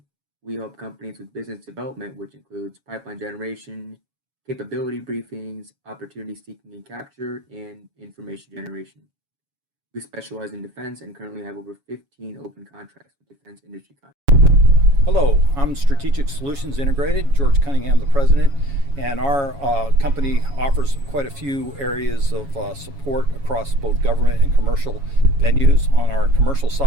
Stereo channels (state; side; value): late; left; 7.2 ms